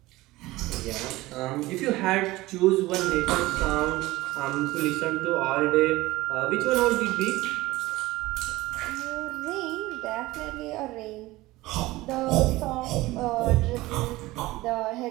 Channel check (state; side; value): quieter; left; 18.9 dB